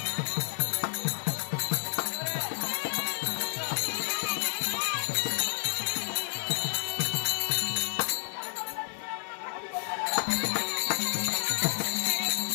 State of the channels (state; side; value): silent; right; 57 dB below the other